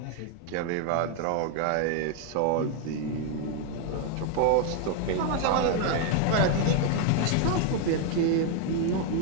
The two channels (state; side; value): different; both; correlation 0.01